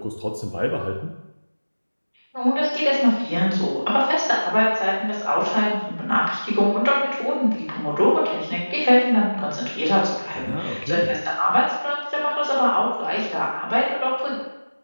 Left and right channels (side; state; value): both; inverted; correlation -1.00